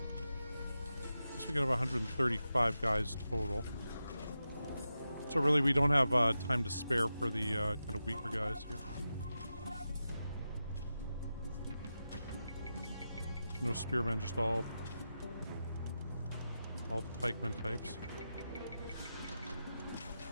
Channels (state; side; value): inverted; both; correlation -0.90